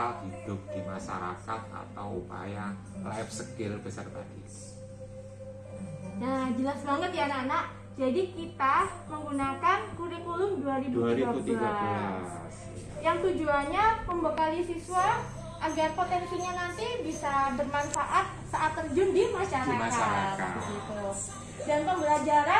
hidup di masyarakat atau upaya life skill peserta didik. Nah, jelas banget ya anak-anak. Jadi kita menggunakan kurikulum 2013. Yang tujuannya membekali siswa agar potensinya nanti bisa bermanfaat saat terjun di masyarakat. Di masyarakat. Begitu. Dan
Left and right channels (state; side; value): identical; both; correlation 1.00